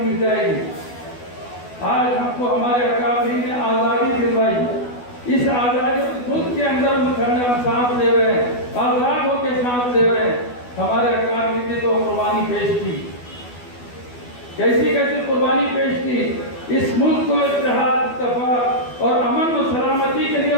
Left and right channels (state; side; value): late; right; 12 ms